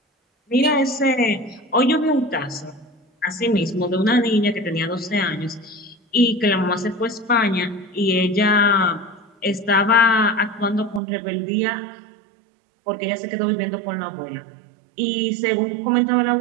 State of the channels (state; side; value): drops out; left; at 11.0 s